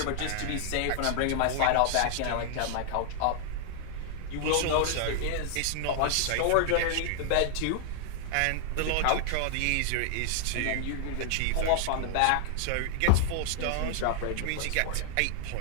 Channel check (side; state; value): both; different; correlation 0.00